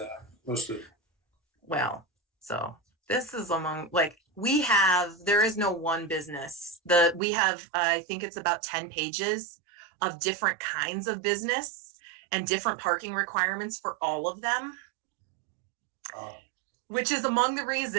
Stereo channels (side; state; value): left; drops out; at 7.2 s